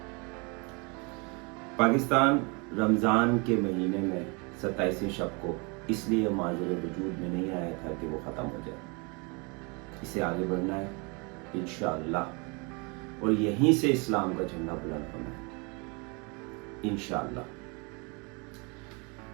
پاکستان رمضان کے مہینے میں 27ویں شب کو اس لیے معذور وجود میں نہیں آیا تھا کہ وہ ختم ہو جائے. اسے آگے بڑھنا ہے انشاءاللہ, اور یہیں سے اسلام کا جھنڈا بلند ہونا ہے انشاءاللہ.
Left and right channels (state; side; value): quieter; left; 30.9 dB